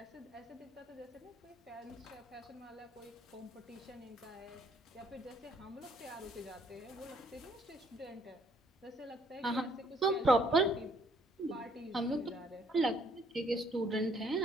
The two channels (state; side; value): normal; both; correlation 0.65